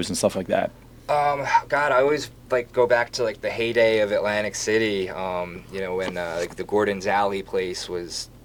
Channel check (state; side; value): identical; both; correlation 1.00